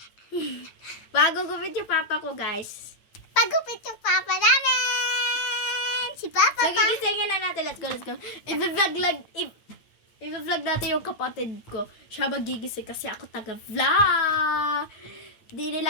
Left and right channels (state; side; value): late; right; 8.9 ms